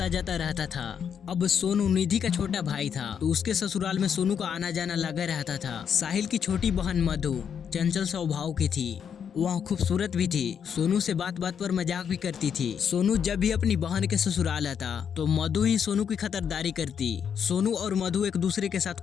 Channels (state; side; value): quieter; right; 7.7 dB